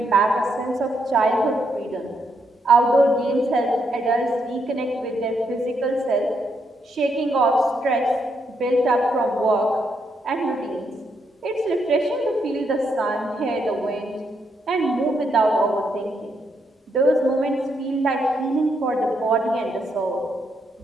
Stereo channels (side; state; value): both; normal; correlation 0.77